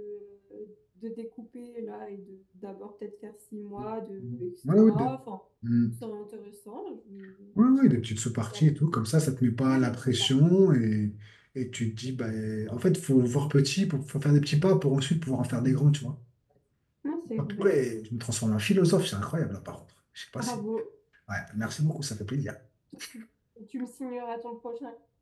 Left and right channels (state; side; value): identical; both; correlation 1.00